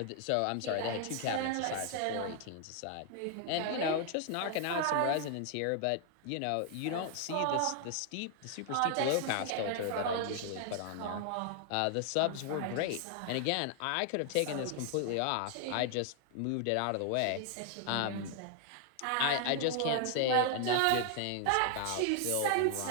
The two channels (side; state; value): both; different; correlation 0.00